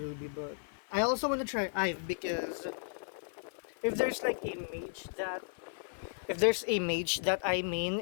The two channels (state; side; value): silent; right; 55 dB below the other